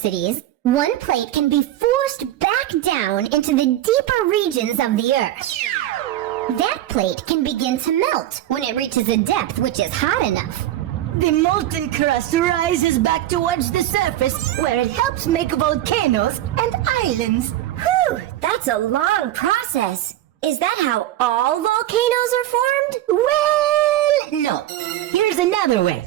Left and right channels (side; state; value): left; quieter; 13.5 dB